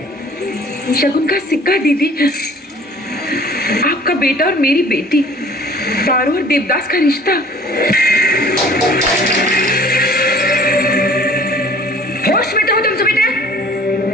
शगुन का सिक्का दीदी, आपका बेटा और मेरी बेटी, पारो और देवदास का रिश्ता। होश में तो हो तुम सुमित्रा?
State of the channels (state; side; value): normal; both; correlation 0.49